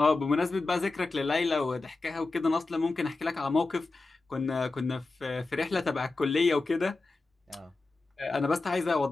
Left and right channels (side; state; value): right; quieter; 3.4 dB